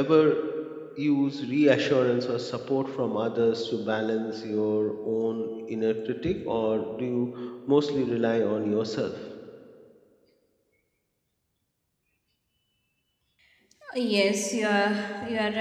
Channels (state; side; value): identical; both; correlation 1.00